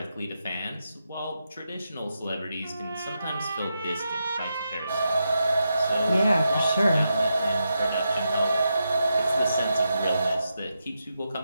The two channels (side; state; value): both; inverted; correlation -0.86